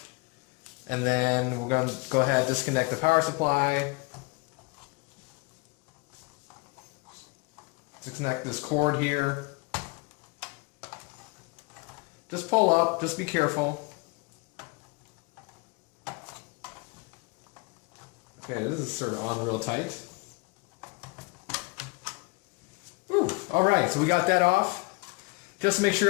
And then we're going to go ahead and disconnect the power supply. Disconnect this cord here. Just pull up, just be careful. Okay, this is sort of on real tight. Ooh, alright, so we got that off. Just to make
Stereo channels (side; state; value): right; quieter; 26.7 dB